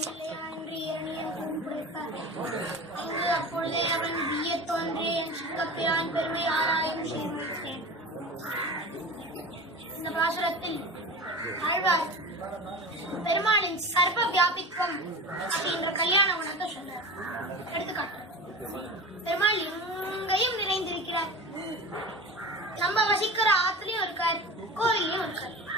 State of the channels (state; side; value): normal; both; correlation 0.32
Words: என்று இரணியன் கூப்பிடுத்தார். அங்கு அப்பொழுதே அவன் விய தோன்றே என் சிங்கப்பிரான் பெருமை ஆராயும் சேர்ந்தேன். இந்த பாசுரத்தில் ஆழ்வார் பெருமாளின் சர்வ வியாபித்வம் அப்படின்ற கல்யாண குணத்தை சொல்றார். எடுத்துக்காட்டு, பெருமாள் எங்கேயும் நிறைந்திருக்கிறார். நம்ம வசிக்கிற ஆத்திலையும் இருக்கார், கோவிலையும் இருக்கார்.